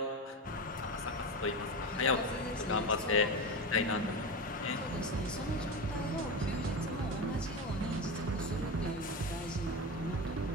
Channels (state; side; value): normal; both; correlation 0.20